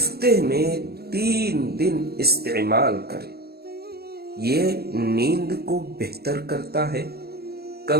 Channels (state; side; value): late; left; 0.46 ms